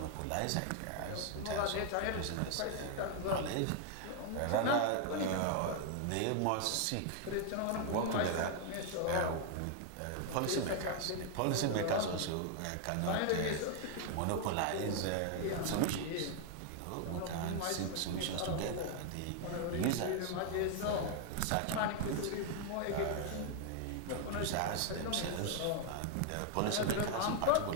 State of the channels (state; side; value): different; both; correlation 0.00